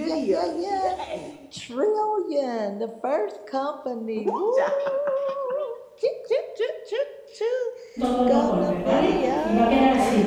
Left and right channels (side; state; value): both; identical; correlation 1.00